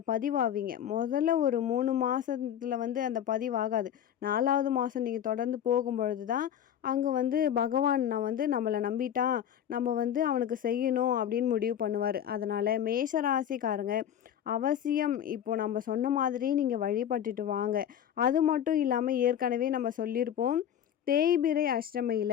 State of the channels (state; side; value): quieter; right; 9.8 dB